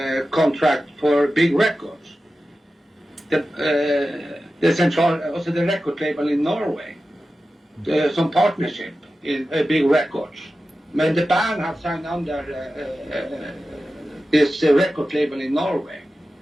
contract for Big Records, the record label in Norway. Some partnership in Big Records. But the band have signed under this record label in Norway.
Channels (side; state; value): both; normal; correlation 0.93